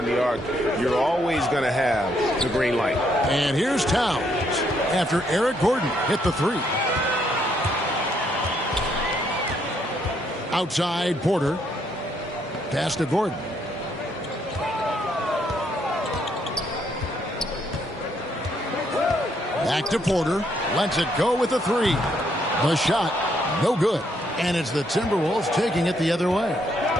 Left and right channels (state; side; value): normal; both; correlation 0.72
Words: the arc, you're always going to have the green light. And here's Towns after Eric Gordon hit the 3. Outside, Porter. Pass to Gordon. Back to Porter. Lets it go with a 3. The shot, no good. And it's the Timberwolves taking it the other way.